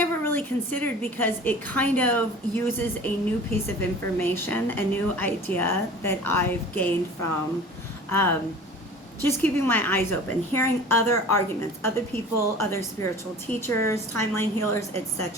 really considered because it kind of uses a new piece of information, a new idea that I've gained from just keeping my eyes open, hearing other arguments, other people, other spiritual teachers, timeline healers,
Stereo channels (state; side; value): normal; both; correlation 0.42